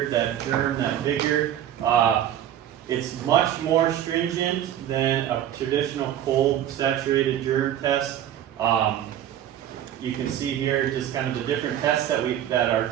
that germ, that vigor. It's much more stringent than a traditional cold saturated germ test. You can see here just kind of the different tests that are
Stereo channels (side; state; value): left; quieter; 11.1 dB